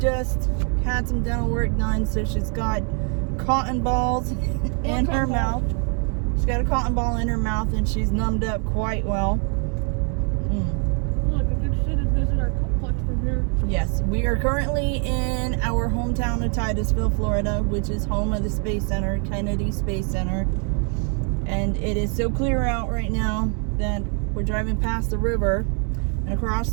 had some dental work done, so she's got cotton balls in her mouth. She's got a cotton ball in her mouth and she's numbed up quite well. Look, I can see the visitor complex from here. Yes, we are currently in our hometown of Titusville, Florida, which is home of the Space Center, Kennedy Space Center. And it is so clear out right now that we're driving past the river, and across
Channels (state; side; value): quieter; left; 39.9 dB